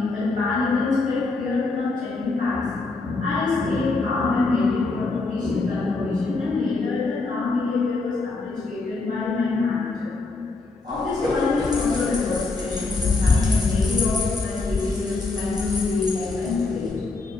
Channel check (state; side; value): quieter; right; 3.6 dB